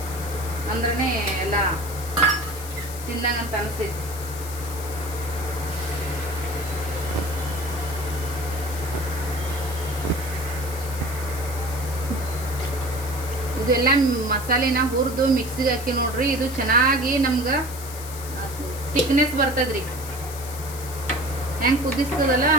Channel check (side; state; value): left; noise; hiss, 12 dB below the sound